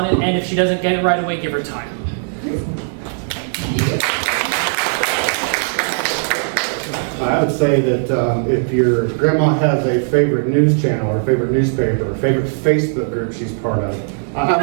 it. And if she doesn't get it right away, give her time. I would say that if your grandma has a favorite news channel or favorite newspaper or favorite Facebook group she's part of,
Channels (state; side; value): silent; left; digital silence